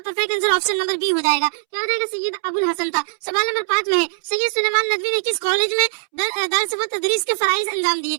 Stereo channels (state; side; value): silent; left; 65 dB below the other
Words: perfect answer option number B हो जाएगा, क्या हो जाएगा, सैयद अबुल हसन था। सवाल नंबर 5 में है सैयद सुलेमान नदवी ने किस कॉलेज में दर्स व तदरीस के फराइज अंजाम दिए।